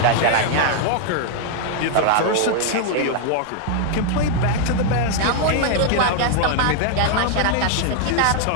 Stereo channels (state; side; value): different; both; correlation 0.00